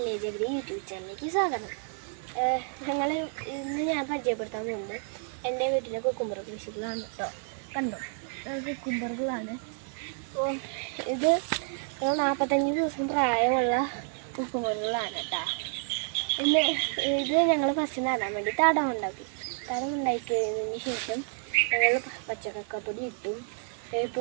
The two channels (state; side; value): silent; left; 58 dB below the other